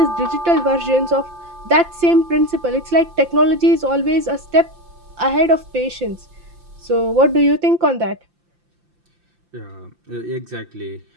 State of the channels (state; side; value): late; left; 5.8 ms